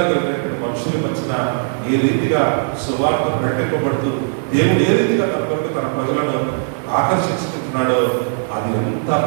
కలిగినటువంటి మనుషుల మధ్యన ఏ రీతిగా సువార్త ప్రకటింపబడుతూ దేవుడు ఏ రీతిగా తన కొరకు తన ప్రజలను ఆకర్షించుకుంటున్నాడో అది అంతా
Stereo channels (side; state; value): left; silent; 58 dB below the other